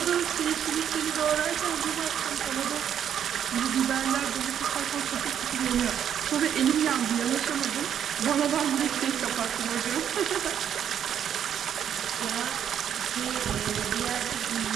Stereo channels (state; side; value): quieter; left; 9.2 dB